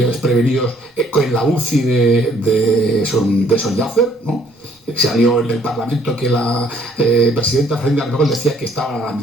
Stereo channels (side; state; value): both; normal; correlation 0.63